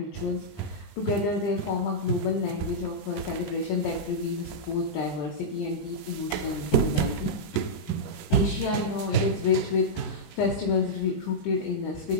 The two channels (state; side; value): late; right; 20 ms